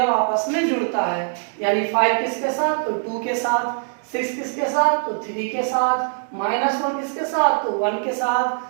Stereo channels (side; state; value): left; silent; digital silence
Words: आपस में जुड़ता है। यानी 5 किसके साथ, तो 2 के साथ, 6 किसके साथ, तो 3 के साथ, -1 किसके साथ, तो 1 के